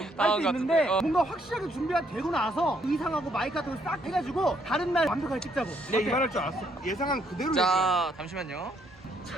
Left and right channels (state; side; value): normal; both; correlation 0.71